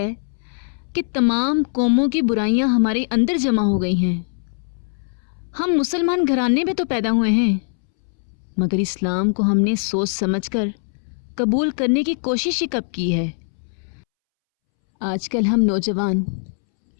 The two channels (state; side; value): silent; right; 65 dB below the other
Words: कि तमाम कौमों की बुराइयां हमारे अंदर जमा हो गई हैं। हम मुसलमान घराने में तो पैदा हुए हैं, मगर इस्लाम को हमने सोच समझकर कबूल करने की कोशिश ही कब की है। आजकल हम नौजवान